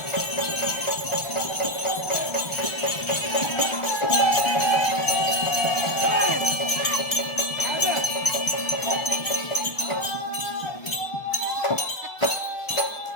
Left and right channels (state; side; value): late; right; 1.3 ms